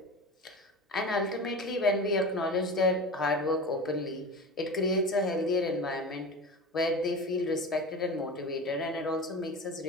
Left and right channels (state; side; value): normal; both; correlation 0.31